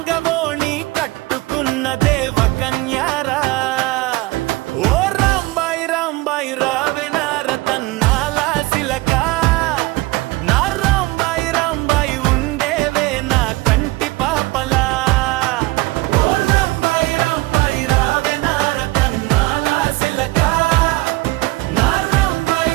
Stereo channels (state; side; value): quieter; left; 20.9 dB